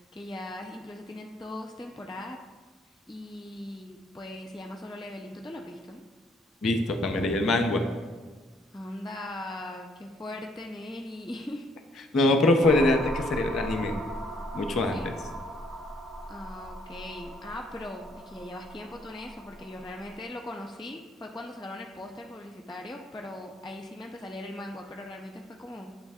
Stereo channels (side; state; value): both; normal; correlation 0.67